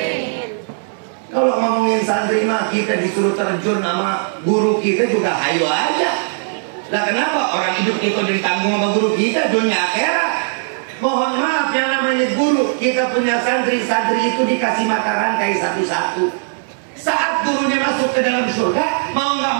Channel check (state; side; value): silent; left; 65 dB below the other